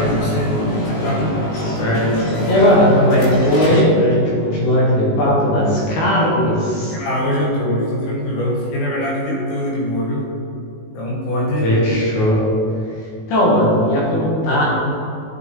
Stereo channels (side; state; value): right; late; 19 ms